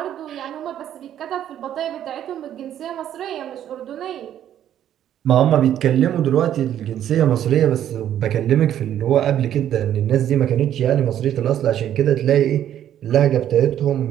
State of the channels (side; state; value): left; quieter; 10.8 dB